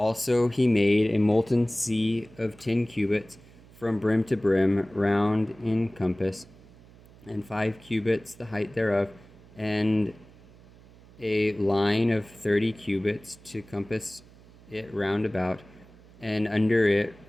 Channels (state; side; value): noise; right; hum, 24 dB below the sound